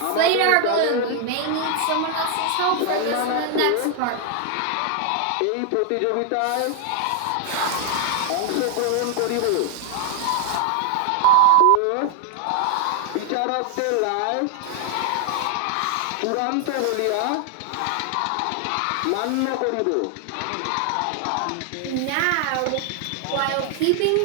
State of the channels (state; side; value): different; both; correlation 0.00